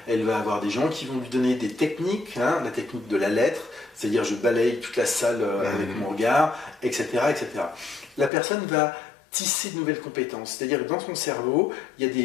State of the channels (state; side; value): drops out; right; at 8.3 s